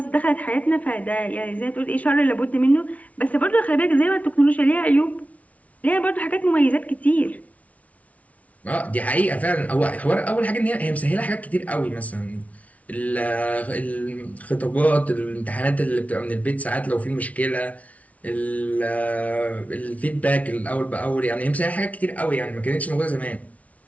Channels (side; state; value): right; late; 0.068 ms